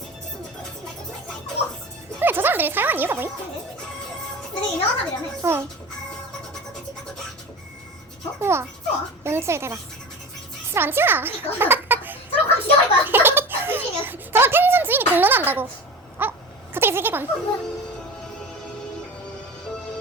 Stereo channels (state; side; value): normal; both; correlation 0.32